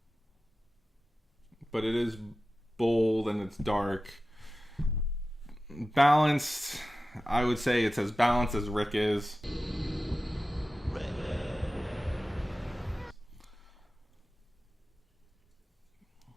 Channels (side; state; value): both; normal; correlation 0.94